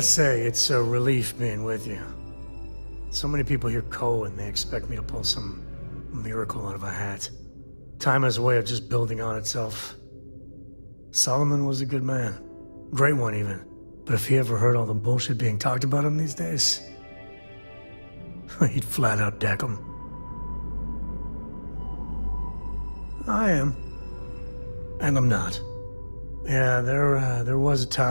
say, it's a relief being with you. So many people hear Coe and they expect me to pull some miracle out of a hat. Time has a way of just building on itself. Solomon was a good man. Great one, even. But if he ever heard all the bullshit being talked about him these days, he'd flat out deck him. I am. And I'm not. Yeah, there was a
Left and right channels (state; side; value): inverted; both; correlation -1.00